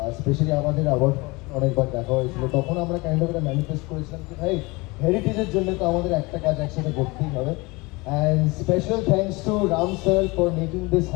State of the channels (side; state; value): right; quieter; 24.7 dB